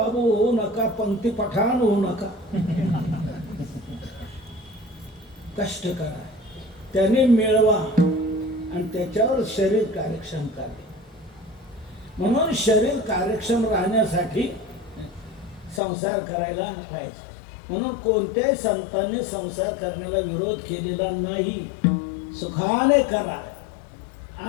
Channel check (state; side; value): drops out; right; at 15.8 s